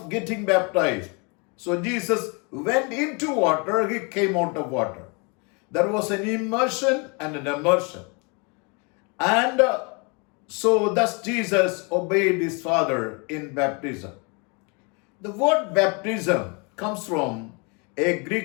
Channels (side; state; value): right; quieter; 32.2 dB